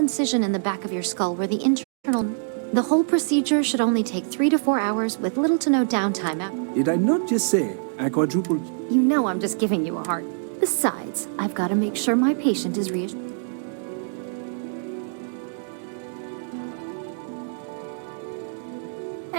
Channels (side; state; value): left; silent; digital silence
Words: in the back of your skull where the internal... The whole procedure should only take 3 to 4 hours with little to no downtime. Did I not just say I quadrupled? You know I'm just giving you a heart. Besides, I've got to make sure my patient is reassured.